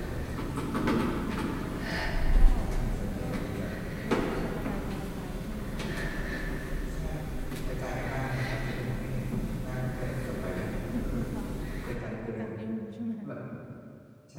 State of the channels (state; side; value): identical; both; correlation 1.00